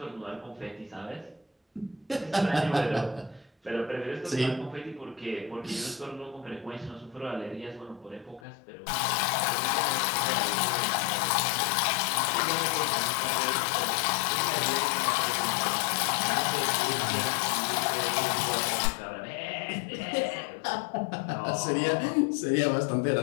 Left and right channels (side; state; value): right; drops out; at 8.4 s